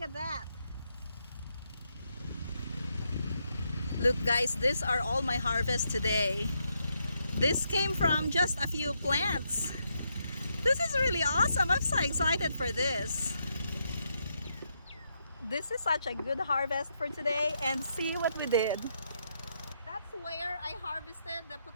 that. Look, guys, these are all my harvest today. This came from just a few plants. This is really awesome. I'm so excited for this. This is such a good harvest for today, and see what we did. That's where I harvested the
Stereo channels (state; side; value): inverted; both; correlation -0.80